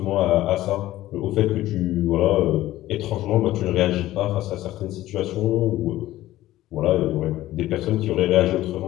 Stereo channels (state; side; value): quieter; right; 15.3 dB